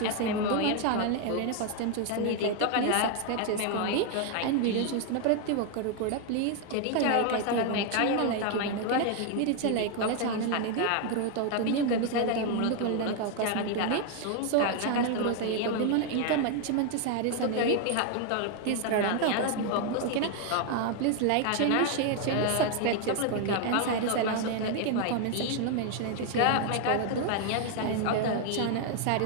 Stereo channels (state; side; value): different; both; correlation 0.00